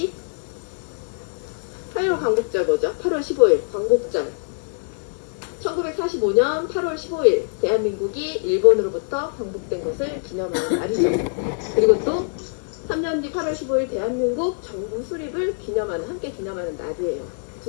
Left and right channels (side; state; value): right; silent; digital silence